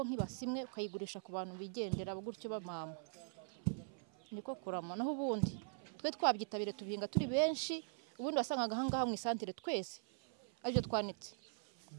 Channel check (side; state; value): left; silent; 50 dB below the other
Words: nk'ibasimwe ukayigurisha ku bantu bigendera gutyo bamama. Niko kurama naho ubundi twe twabyitabire tubihinga turi benshi. Ubundi wasangaga ahangaha mu isantere twese aribyo twanitse